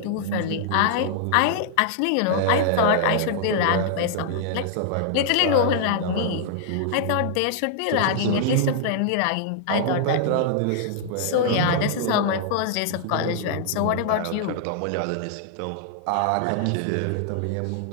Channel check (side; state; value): both; different; correlation -0.01